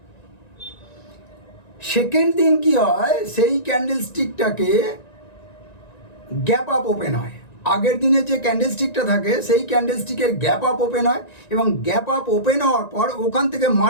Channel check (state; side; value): late; right; 1.9 ms